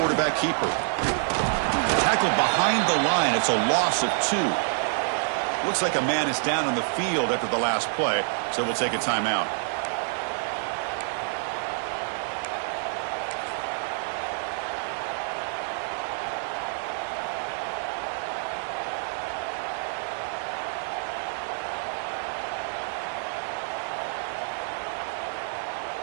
keeper. Tackled behind the line. It's a loss of 2. Looks like a man is down on the field after the last play, so we'll take a timeout.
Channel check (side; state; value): left; silent; 60 dB below the other